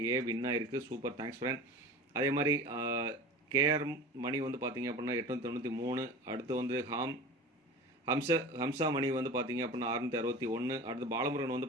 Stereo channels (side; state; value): both; normal; correlation 0.35